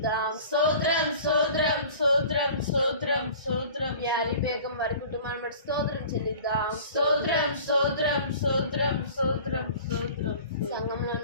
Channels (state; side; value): inverted; both; correlation -0.44